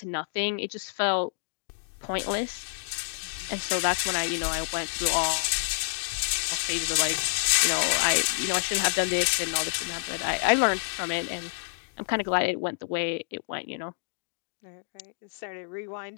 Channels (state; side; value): silent; right; digital silence